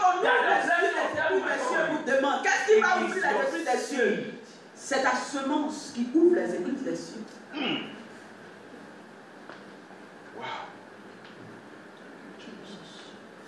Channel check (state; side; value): identical; both; correlation 1.00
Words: on ouvre les cieux vous demande, qu'est-ce qui va ouvrir les églises des cieux? C'est ta semence qui ouvre les églises des cieux. Wow.